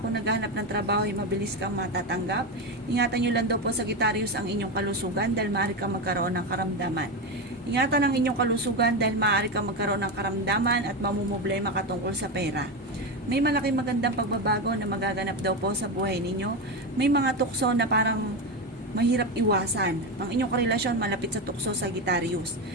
naghahanap ng trabaho ay mabilis kang matatanggap. Ingatan nyo lang daw po Sagittarius ang inyong kalusugan dahil maaari kang magkaroon ng karamdaman. Ingatan ang inyong kalusugan dahil maaari kang magkaroon ng karamdaman at mamumblema ka tungkol sa pera. May malaking magandang pagbabago na magaganap daw po sa buhay ninyo. May mga tukso na parang mahirap iwasan. Ang inyong karelasyon malapit sa tukso Sagittarius.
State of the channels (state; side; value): normal; both; correlation 0.15